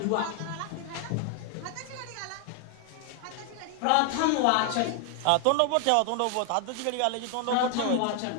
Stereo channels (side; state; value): both; different; correlation 0.00